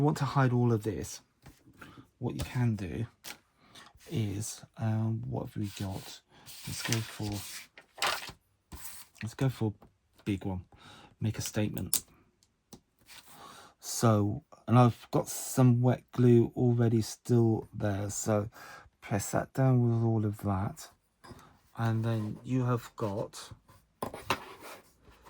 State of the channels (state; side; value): identical; both; correlation 1.00